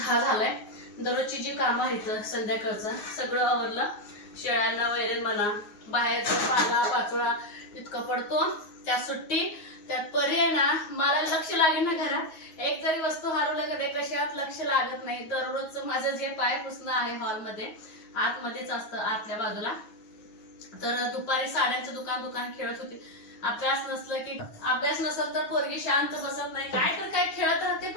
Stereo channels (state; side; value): late; right; 9.5 ms